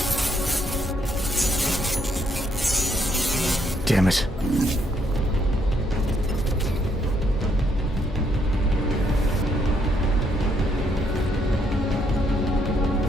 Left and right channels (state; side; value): normal; both; correlation 0.72